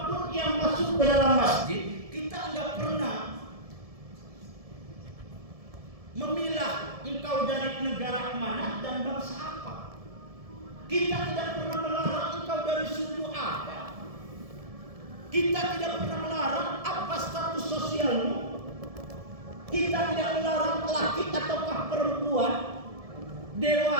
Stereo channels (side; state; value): left; late; 1.7 ms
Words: yang masuk ke dalam masjid, kita nggak pernah memilah engkau dari negara mana dan bangsa apa. Kita tidak pernah melarang engkau dari suku apa. Kita tidak pernah melarang apa status sosialmu. Kita tidak melarang laki ataukah perempuan,